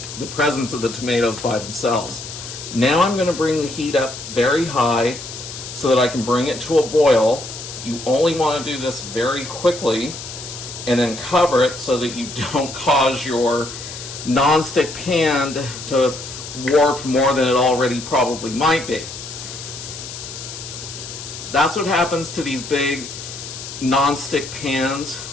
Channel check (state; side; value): noise; left; hiss, 10 dB below the sound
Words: the presence of the tomatoes by themselves. Now I'm going to bring the heat up very high so that I can bring it to a boil. You only want to do this very quickly, and then cover it so that you don't cause your nonstick pan to warp more than it already probably might be. That's what happens to these big nonstick pans